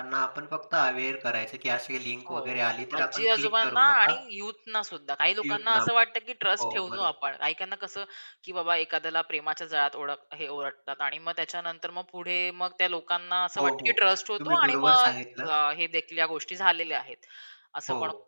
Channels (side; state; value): both; inverted; correlation -1.00